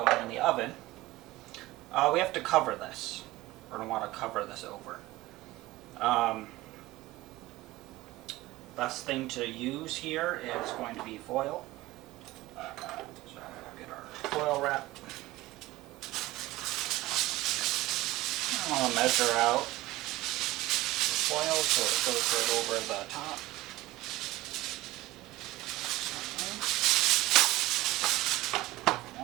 in the oven, we have to cover this. We're going to want to cover this over. Best thing to use here is going to be foil. So we'll get our foil wrap. I'm going to measure out the foil so it goes right over the top.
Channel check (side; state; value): left; quieter; 18.2 dB